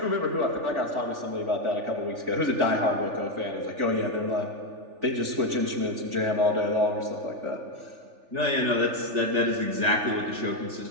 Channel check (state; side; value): late; left; 3.4 ms